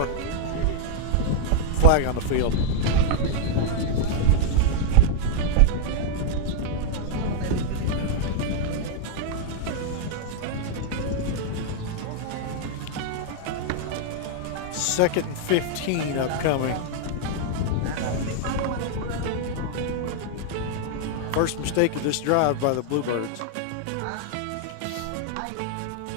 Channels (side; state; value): both; different; correlation -0.01